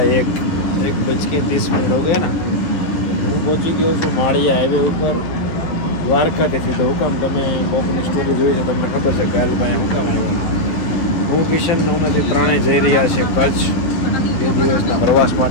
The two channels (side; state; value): right; late; 11 ms